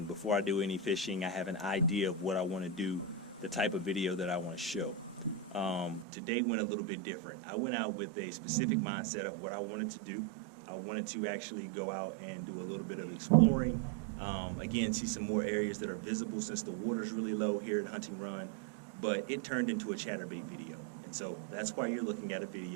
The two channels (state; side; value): drops out; left; at 6.1 s